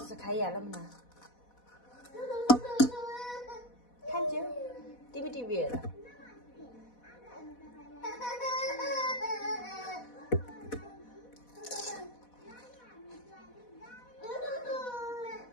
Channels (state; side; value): late; right; 4.1 ms